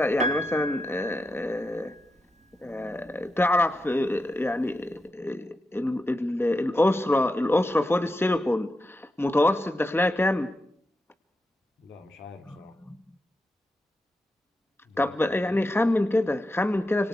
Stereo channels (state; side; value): normal; both; correlation 0.88